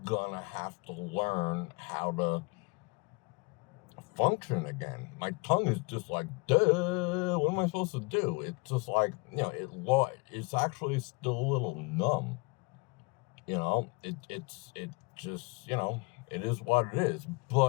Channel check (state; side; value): quieter; right; 29.0 dB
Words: gonna have to learn how to function again. My tongue is just like, duh, what am I supposed to do? It's just like, it's actually still a little numb. It just, it is what it is,